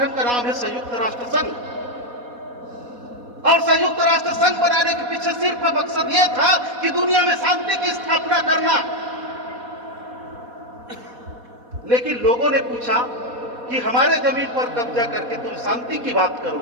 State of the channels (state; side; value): late; left; 4.1 ms